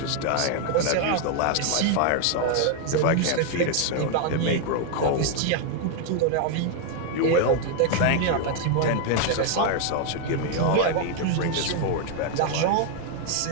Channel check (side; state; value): both; different; correlation 0.00